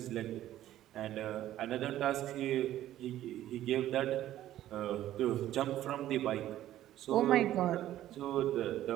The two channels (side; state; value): left; quieter; 13.2 dB